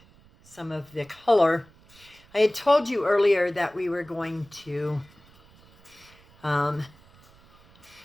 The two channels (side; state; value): right; noise; rumble, 27 dB below the sound